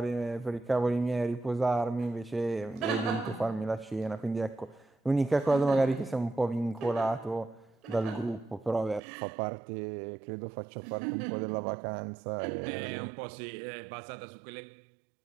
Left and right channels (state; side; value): drops out; left; at 9.0 s